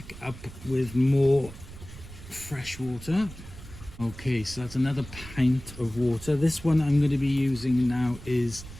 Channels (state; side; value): noise; right; rumble, 15 dB below the sound